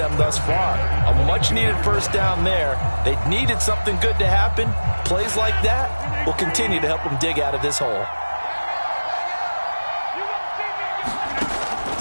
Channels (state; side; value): inverted; both; correlation -1.00